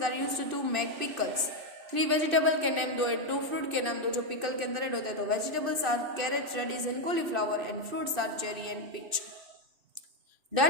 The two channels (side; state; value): left; late; 2.6 ms